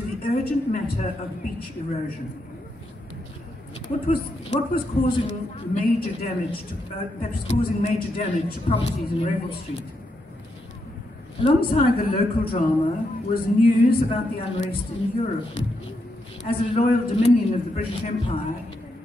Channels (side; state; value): both; normal; correlation 0.81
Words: urgent matter of beach erosion. What was causing major damage to properties in Revel Street? Alongside the local drama was news about the unrest in Europe. As a loyal dominion of the British Empire,